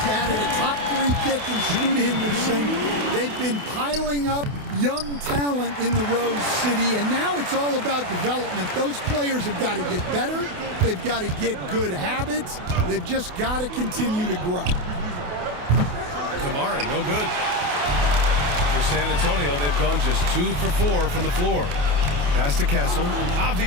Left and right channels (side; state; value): left; late; 28 ms